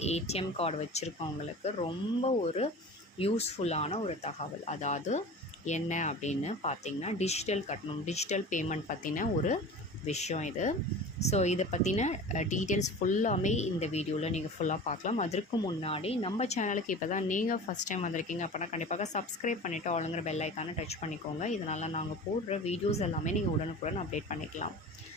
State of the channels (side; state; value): both; normal; correlation 0.36